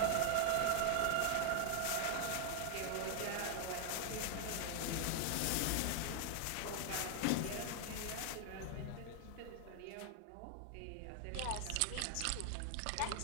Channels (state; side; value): different; both; correlation 0.00